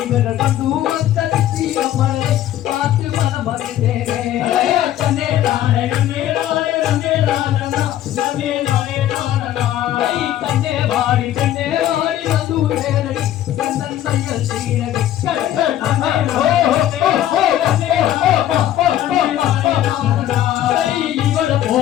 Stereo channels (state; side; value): quieter; right; 12.3 dB